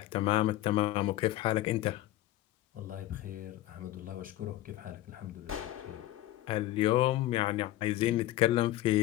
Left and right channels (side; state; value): right; quieter; 15.3 dB